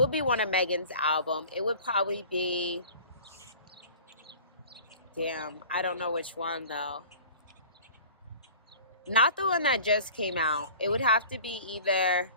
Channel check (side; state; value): both; inverted; correlation -0.44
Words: be one of Megan's album. It would probably be, damn, I don't know which one though. Not the one that just came out. It would have to be either